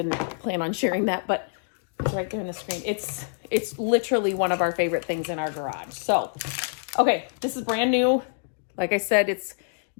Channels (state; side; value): silent; right; 61 dB below the other